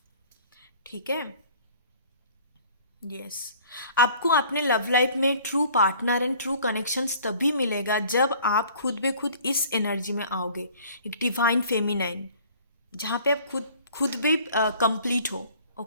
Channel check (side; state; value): both; inverted; correlation -0.52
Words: ठीक है। यस, आपको अपने लव लाइफ में true partner and true connections तभी मिलेगा जब आप खुद बे खुद इस एनर्जी में आओगे, एक डिवाइन फेमिनाइन, जहाँ पे आप खुद खुद भी कंप्लीट हो,